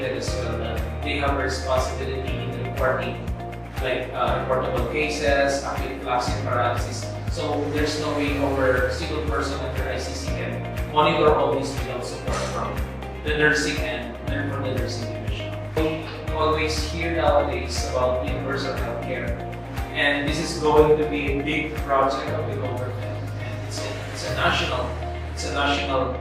as well. They have a responsibility in reporting, like reportable cases, acute flaccid paralysis. So there's no way our single person under ICC can monitor all these without support from the nursing and from the nursing division. We always hear nowadays about universal healthcare, and this is going to be a big project of the government, and it's a national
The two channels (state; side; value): identical; both; correlation 1.00